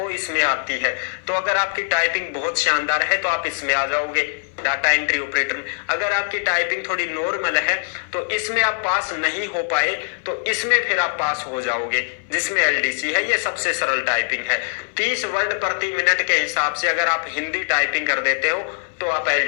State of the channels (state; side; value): silent; right; 61 dB below the other